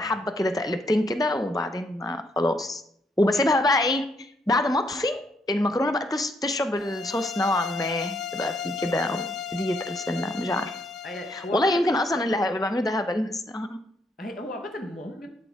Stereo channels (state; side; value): normal; both; correlation 0.73